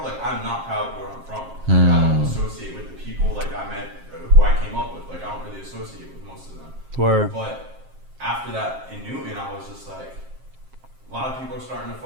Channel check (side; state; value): left; late; 7.5 ms